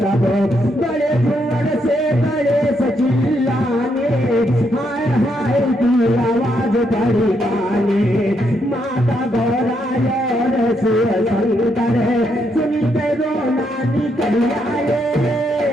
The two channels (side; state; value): both; normal; correlation 0.77